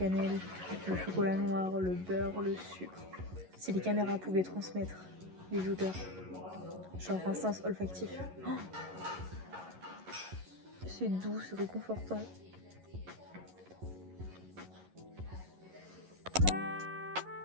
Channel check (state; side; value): late; left; 11 ms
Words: le chocolat noir, le beurre, le sucre. Si les caméras pouvaient transmettre les odeurs, genre un sens olfactif. Oh, c'est doux, c'est réconfortant.